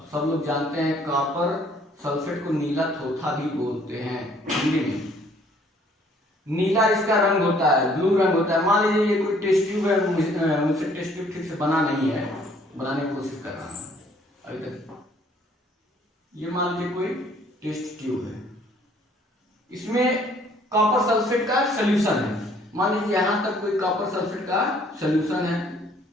सब लोग जानते हैं कॉपर सल्फेट को नीला थोथा भी बोलते हैं हिंदी में। नीला इसका रंग होता है, ब्लू रंग होता है। मान लीजिए ये कोई टेस्ट ट्यूब है, मुझसे टेस्ट ट्यूब ठीक से बना नहीं है, बनाने की कोशिश कर रहा हूं अभी तक। ये मान लीजिए कोई टेस्ट ट्यूब है, इसमें कॉपर सल्फेट का सोल्यूशन है। मान लीजिए यहां तक कोई कॉपर सल्फेट का सोल्यूशन है,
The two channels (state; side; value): normal; both; correlation 0.60